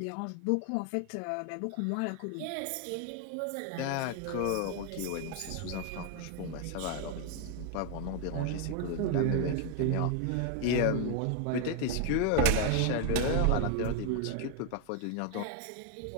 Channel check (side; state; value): both; different; correlation 0.01